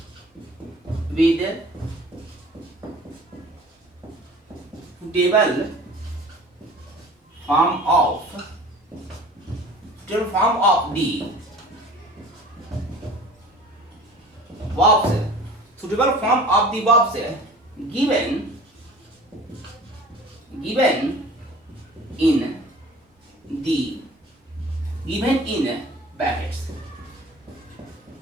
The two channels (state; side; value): normal; both; correlation 0.45